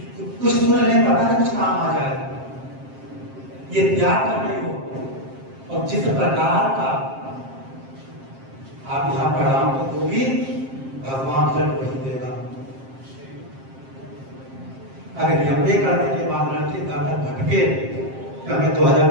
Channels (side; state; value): left; late; 7.5 ms